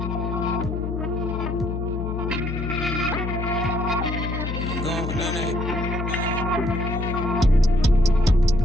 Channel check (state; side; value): noise; left; hum, 4 dB below the sound